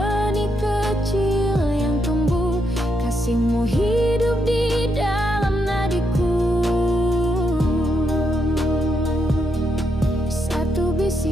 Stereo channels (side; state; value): both; normal; correlation 0.79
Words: kecil yang tumbuh, kasih-Mu hidup di dalam nadiku. Satu